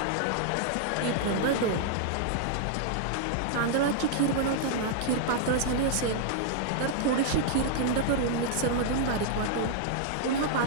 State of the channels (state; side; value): different; both; correlation -0.01